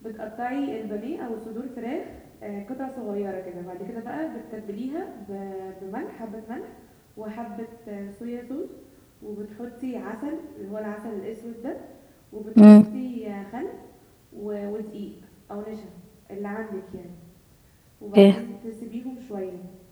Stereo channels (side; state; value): both; identical; correlation 1.00